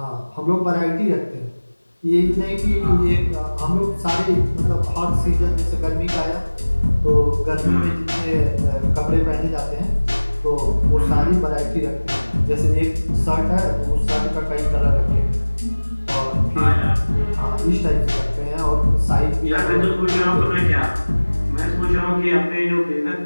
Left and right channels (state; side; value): inverted; both; correlation -1.00